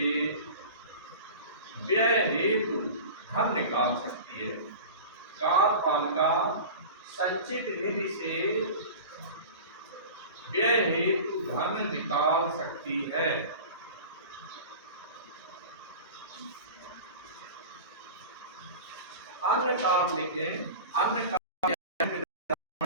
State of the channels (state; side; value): inverted; both; correlation -0.35